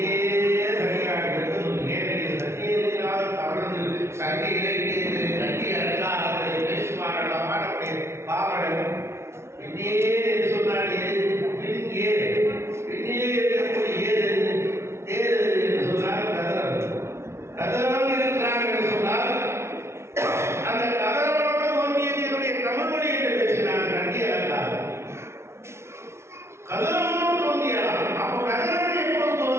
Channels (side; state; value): left; late; 0.13 ms